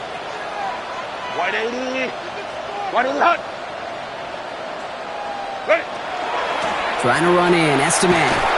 180. 180 hunt. Ready. Trying to run in, Estime.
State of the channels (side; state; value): both; identical; correlation 1.00